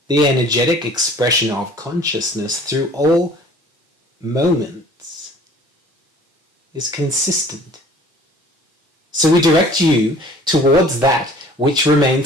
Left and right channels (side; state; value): both; normal; correlation 0.50